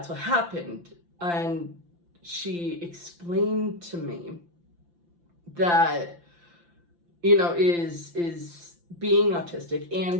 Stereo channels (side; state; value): left; late; 5.8 ms